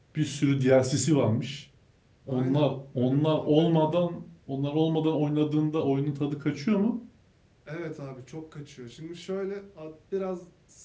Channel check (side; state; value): both; identical; correlation 1.00